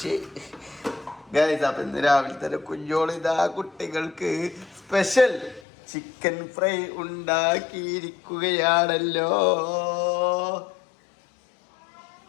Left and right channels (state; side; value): drops out; right; at 5.6 s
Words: ഗൈസ്. അപ്പം ഇന്ന് രാവിലെ തന്നെ കുഞ്ഞോളിതാ കുട്ടികൾക്ക് സ്പെഷ്യൽ ചിക്കൻ ഫ്രൈ ഉണ്ടാക്കിയിരിക്കുകയാണല്ലോ.